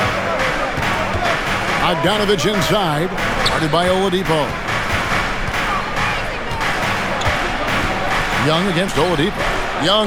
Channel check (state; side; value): identical; both; correlation 1.00